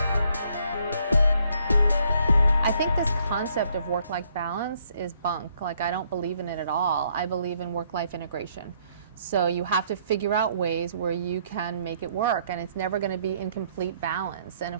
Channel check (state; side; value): inverted; both; correlation -0.68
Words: I think this concept of work-life balance is bunk. Like, I don't believe in it at all. I believe in work-life integration. So you have to figure out ways where you can make it work, and it's never going to be in complete balance. And